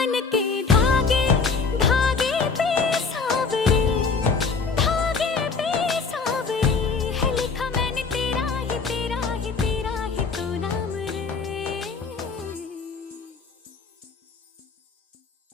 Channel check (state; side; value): quieter; right; 4.9 dB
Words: के धागे धागे पे सावरे धागे पे सावरे है लिखा मैंने तेरा ही तेरा ही तेरा ही तो नाम रे।